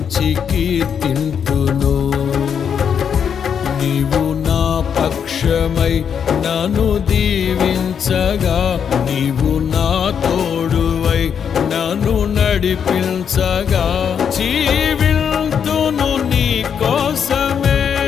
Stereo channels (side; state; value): right; quieter; 7.6 dB